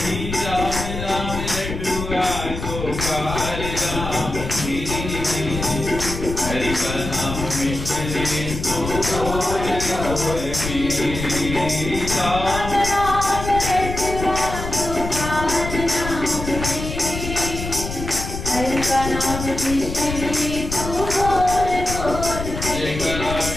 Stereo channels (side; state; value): left; noise; rumble, 6 dB below the sound